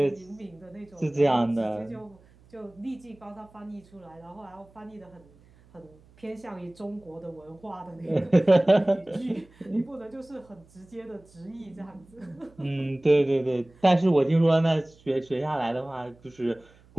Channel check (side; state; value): right; noise; hum, 28 dB below the sound